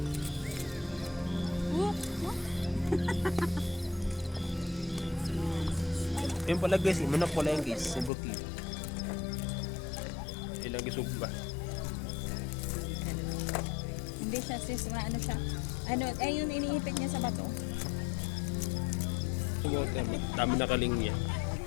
Yung pala guys, manok pala yung guys. Subuki. Ilang gisugba. Hindi siya sis. Ano siya? Ano, ay yung iniipit niya sa bato. Dami na kalingya.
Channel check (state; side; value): drops out; right; at 8.1 s